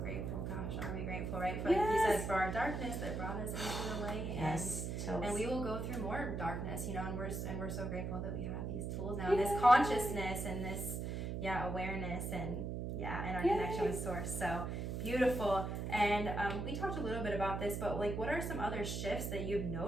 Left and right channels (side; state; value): right; noise; hum, 3 dB below the sound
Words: Gosh, are we grateful, right? For like you said, for our darkness that brought us into the light. And we will go through more darkness, you know, and we're so grateful that we have these tools now, this consciousness and this awareness and our connection with source. So beautiful. And we talked a little bit about this, but like what are some other shifts that you've